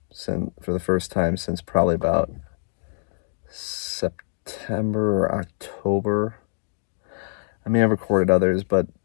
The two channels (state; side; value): silent; right; 62 dB below the other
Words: the first time since probably about September or October. I mean, I've recorded others, but